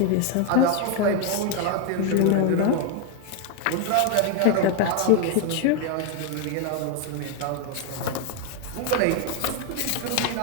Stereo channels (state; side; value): different; both; correlation 0.01